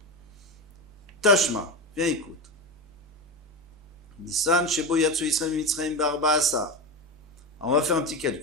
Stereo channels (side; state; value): both; normal; correlation 0.18